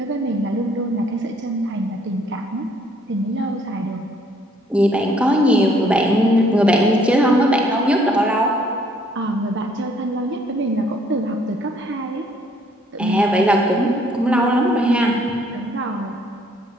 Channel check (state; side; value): normal; both; correlation 0.64